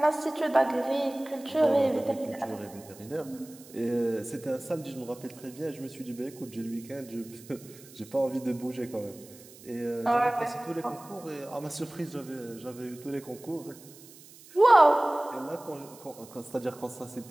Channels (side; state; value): right; noise; hiss, 21 dB below the sound